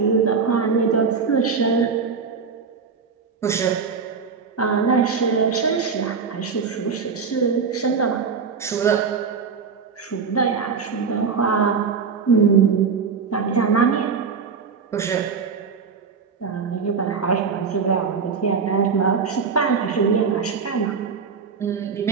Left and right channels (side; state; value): left; quieter; 5.6 dB